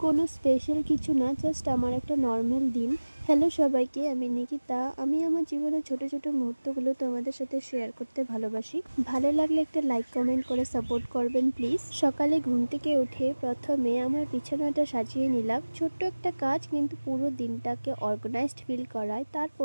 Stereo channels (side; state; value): both; inverted; correlation -1.00